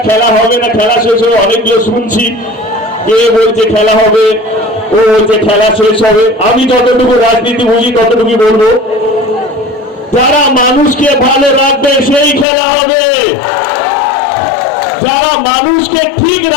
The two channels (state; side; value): drops out; right; at 12.5 s